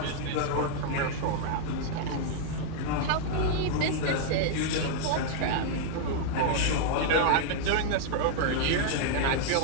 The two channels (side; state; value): both; different; correlation -0.01